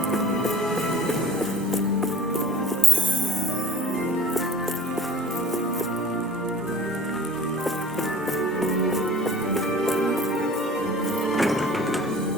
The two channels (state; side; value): normal; both; correlation 0.46